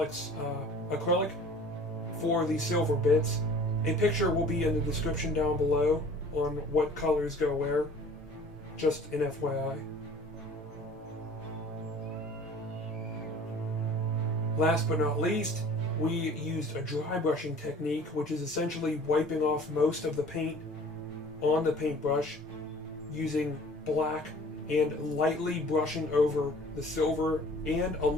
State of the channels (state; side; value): normal; both; correlation 0.48